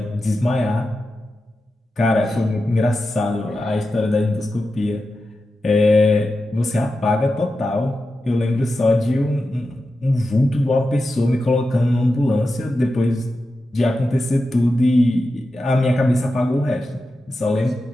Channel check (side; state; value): both; normal; correlation 0.91